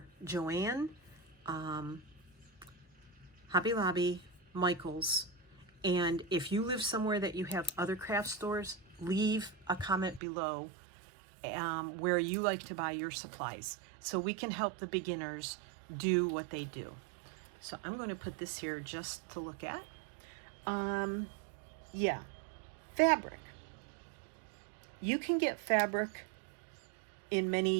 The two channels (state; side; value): drops out; left; at 10.2 s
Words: Joann, Hobby Lobby, Michael's, And if you live somewhere that you have other craft stores, leave a comment below where you like to buy your supplies, so we can help the beginners do what they do. So I'm going to put this here just to look at. Yeah, fabric. You can get fabric in